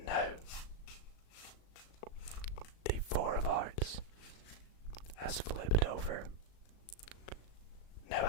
now now the four of hearts has flipped over. Now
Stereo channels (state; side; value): late; right; 37 ms